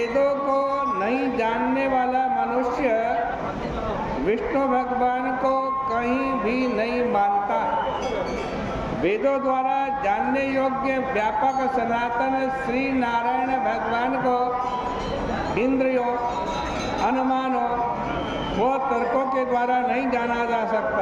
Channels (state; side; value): identical; both; correlation 1.00